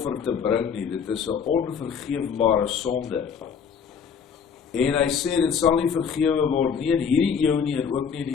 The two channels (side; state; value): right; quieter; 6.8 dB